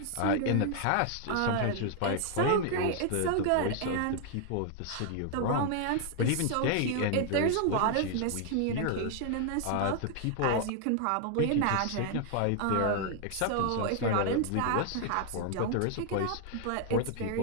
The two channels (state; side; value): different; both; correlation 0.00